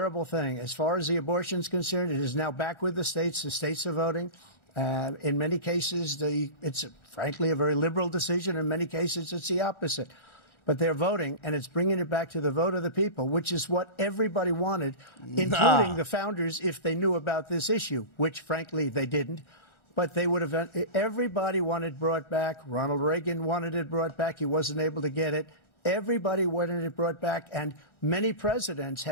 thing. As far as the abortion is concerned, it is now back with the states. The states are voting. In many cases, it's frankly a very liberal decision. In many cases, it's the opposite. But they're voting, and it's bringing it back to the vote of the people, which is what everybody wanted, including the founders, if they knew about this issue, which, frankly, they didn't. But they would have. Everybody wanted it brought back. Ronald Reagan wanted it brought back. He wasn't able to get it. Everybody wanted it brought back, and many presidents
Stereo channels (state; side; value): late; right; 1.4 ms